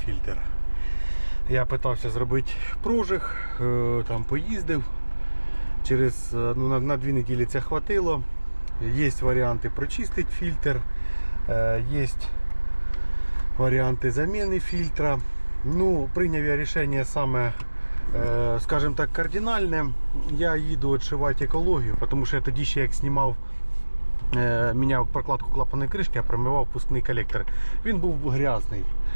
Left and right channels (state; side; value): inverted; both; correlation -1.00